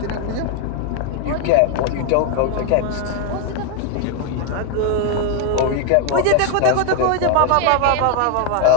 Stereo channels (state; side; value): different; both; correlation 0.00